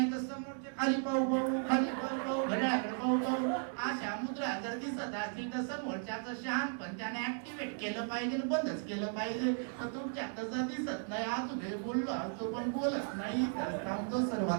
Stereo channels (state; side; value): silent; left; 54 dB below the other